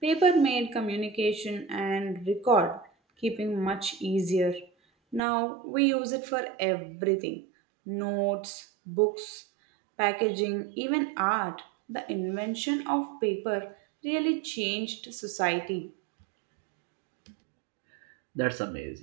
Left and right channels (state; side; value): drops out; left; at 5.2 s